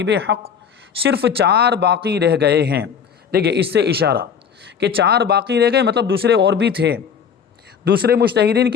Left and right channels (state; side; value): quieter; right; 7.2 dB